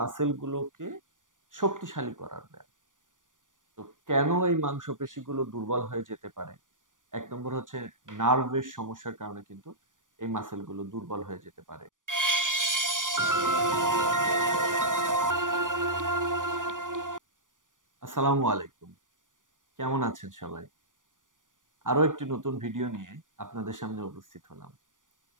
শক্তিশালী করার ব্যায়াম। তো কেন এই মাংসপেশিগুলো দুর্বল হয়ে যেতে পারে? এক নম্বর হচ্ছে নার্ভের সমস্যার কারণে কিন্তু এই মাসেলগুলো দুর্বল হয়ে যেতে পারে। আসসালামু আলাইকুম, কেমন আছেন সবাই? আরো একটি নতুন ভিডিও নিয়ে আপনাদের সামনে উপস্থিত হলাম।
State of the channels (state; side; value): late; left; 0.88 ms